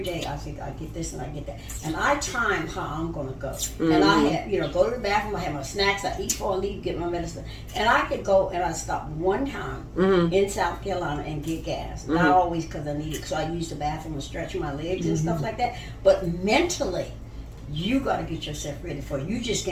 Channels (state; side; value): identical; both; correlation 1.00